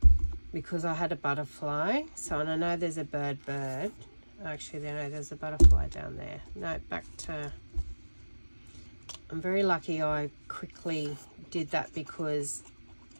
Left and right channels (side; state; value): both; inverted; correlation -1.00